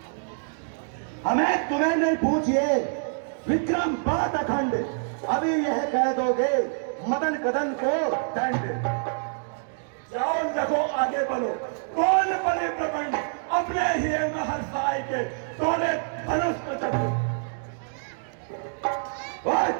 हमें तुम्हें नहीं पूछिए, विक्रम बात अखंड, अभी यह कह दोगे मदन कदन को दंड। जाओ देखो आगे बढ़ो, कौन बने प्रबंध अपने ही महरसाई के तोड़े धनुष पर चढ़े। और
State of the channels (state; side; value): silent; left; digital silence